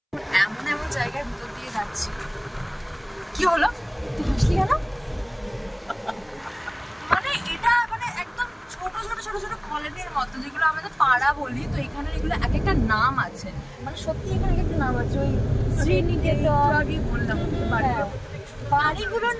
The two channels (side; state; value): both; identical; correlation 1.00